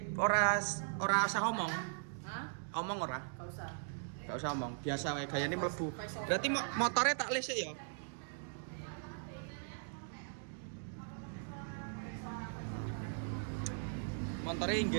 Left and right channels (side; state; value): left; silent; digital silence